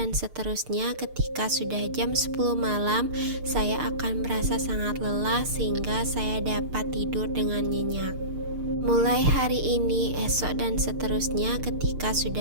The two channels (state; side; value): late; left; 6.6 ms